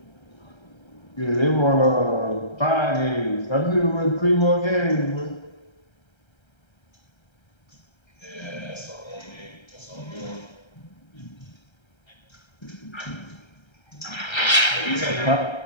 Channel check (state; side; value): late; right; 1.3 ms